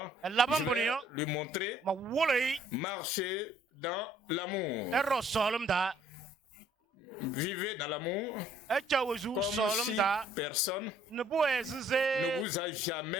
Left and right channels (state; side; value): normal; both; correlation 0.61